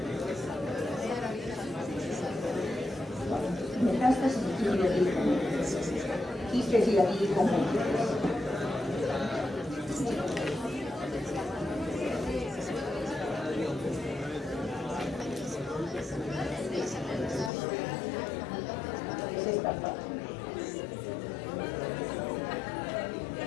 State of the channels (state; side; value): drops out; right; at 17.5 s